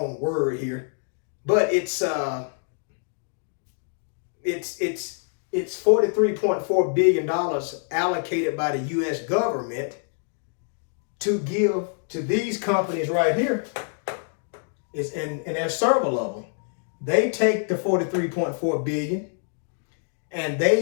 word here, but it's $43.4 billion allocated by the U.S. government to give to these companies right here. And there's several of them. They take the $43.4 billion and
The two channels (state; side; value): silent; right; 61 dB below the other